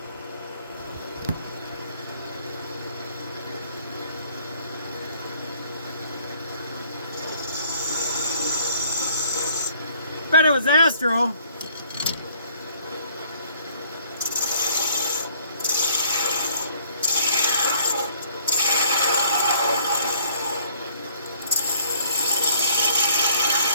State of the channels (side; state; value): both; inverted; correlation -0.60